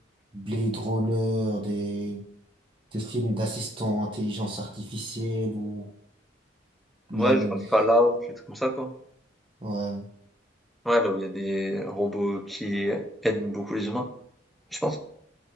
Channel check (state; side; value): normal; both; correlation 0.69